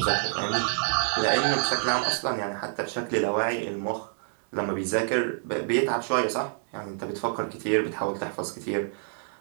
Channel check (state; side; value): silent; left; 60 dB below the other